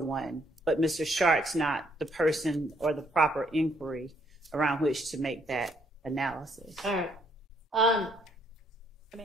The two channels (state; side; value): normal; both; correlation 0.69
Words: but Mr. Shart's not the person or the proper inquiry around which to make that analysis. All right. I